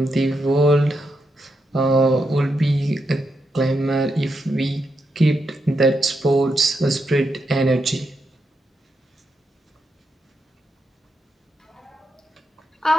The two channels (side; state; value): both; normal; correlation 0.83